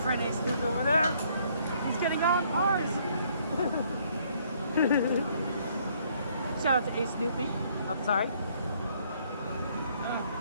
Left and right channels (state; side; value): inverted; both; correlation -0.65